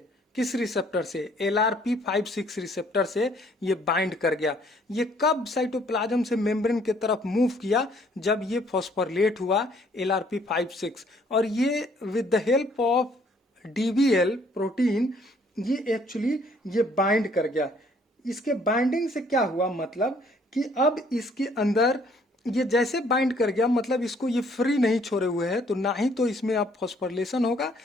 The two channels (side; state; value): both; normal; correlation 0.62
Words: किस रिसेप्टर से, LRP56 रिसेप्टर से ये बाइंड कर गया। ये कब साइटोप्लाज्म से मेम्ब्रेन की तरफ मूव किया, जब ये फॉस्फोरिलेट हुआ LRP56, और ये with the help of DVL protein ये एक्चुअली ये बाइंड कर गया। इसके बाइंडिंग से क्या हुआ, मतलब कि अब इसके अंदर ये जैसे बाइंड कर गया, मतलब इसको ये फ्री नहीं छोड़े हुए है, तो ना ही तो इसमें अब फॉस्फोरिलेशन होगा,